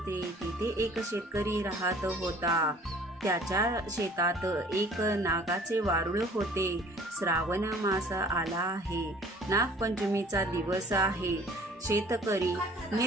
तिथे एक शेतकरी राहत होता। त्याच्या शेतात एक नागाचे वारुळ होते। श्रावण मास आला आहे, नागपंचमीचा दिवस आहे। शेतकरी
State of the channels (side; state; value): both; normal; correlation 0.52